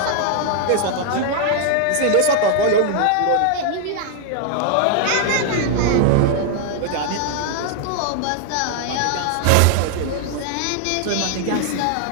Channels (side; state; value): both; different; correlation 0.00